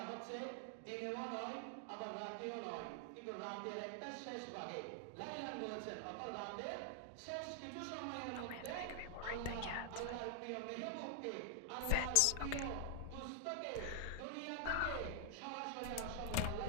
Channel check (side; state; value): both; different; correlation 0.00